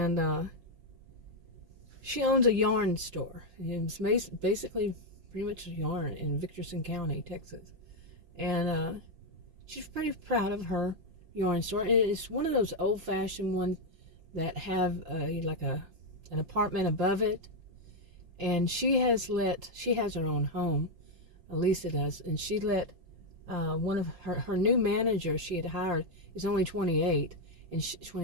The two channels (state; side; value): late; left; 5.7 ms